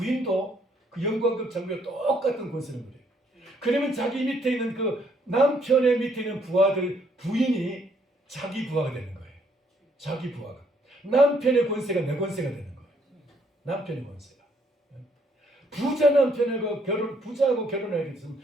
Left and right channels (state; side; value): normal; both; correlation 0.68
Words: 그 영관급 장교와 똑같은 권세를 누려요. 그러면 자기 밑에 있는 그 남편의 밑에 있는 부인이 자기 부하가 되는 거예요. 자기 부하가. 남편의 권세가 내 권세가 되는 거예요. 남편의 권세가. 부자 남편하고 부자하고 결혼하게 됐으면